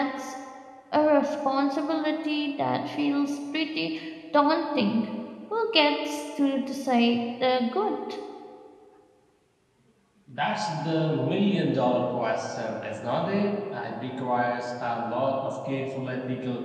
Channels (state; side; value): identical; both; correlation 1.00